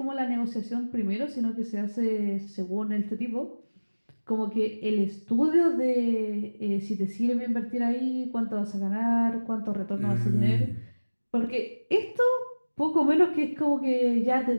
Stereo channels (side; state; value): both; inverted; correlation -1.00